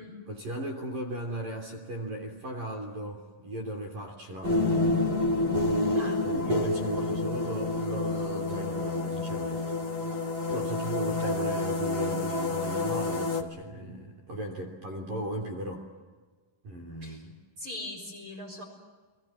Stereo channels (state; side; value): late; left; 11 ms